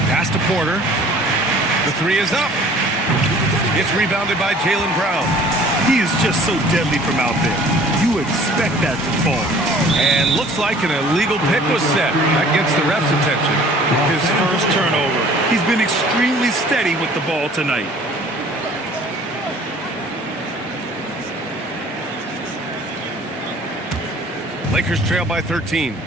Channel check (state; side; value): normal; both; correlation 0.51